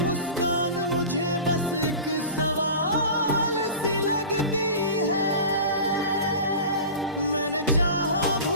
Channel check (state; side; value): inverted; both; correlation -0.34